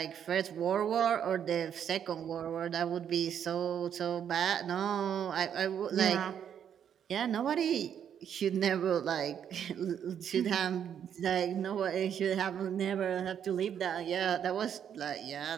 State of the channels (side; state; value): left; quieter; 8.8 dB